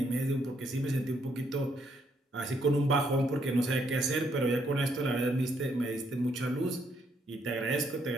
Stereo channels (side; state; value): both; normal; correlation 0.72